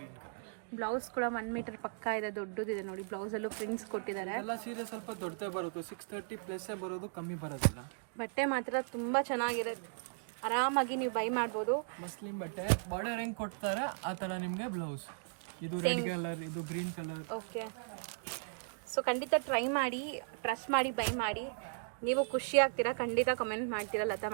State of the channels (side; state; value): left; silent; digital silence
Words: ಬ್ಲೌಸ್ ಕೂಡ 1 ಮೀಟರ್ ಪಕ್ಕ ಇದೆ, ದೊಡ್ಡದಿದೆ ನೋಡಿ. ಬ್ಲೌಸಲ್ಲೂ ಪ್ರಿಂಟ್ಸ್ ಕೊಟ್ಟಿದ್ದಾರೆ. ಎಲ್ಲ ಸೀರೆ ಸ್ವಲ್ಪ ದೊಡ್ಡದೇ ಬರುತ್ತೆ, 630+ ಬರೋದು, ಕಮ್ಮಿ ಬರೋದಿಲ್ಲ. ಬಟ್ಟೆ ಮಾತ್ರ ತುಂಬ ಚೆನ್ನಾಗಿದೆ, ಆರಾಮಾಗಿ ನೀವು ಬೈ ಮಾಡ್ಬೋದು. ಮಸ್ಲಿನ್ ಬಟ್ಟೆ ಬಾರ್ಡರ್ ಹೆಂಗ್ ಕೊಡ್ತಾರೆ ಆ ಥರ ನಿಮಗೆ ಬ್ಲೌಸ್. ಇದು ರೆಡ್ ಕಲರ್, ಇದು ಗ್ರೀನ್ ಕಲರ್. ಓಕೆ, ಸೊ ಖಂಡಿತ ಟ್ರೈ ಮಾಡಿ, ಟ್ರಸ್ಟ್ ಮಾಡಿ ಬೈ ಮಾಡಿ. ನೀವು ಖುಷಿ ಆಗ್ತೀರಾ, ಖಂಡಿತ ಕಮೆಂಟ್ ಮಾಡ್ತೀರಾ ಲತಾ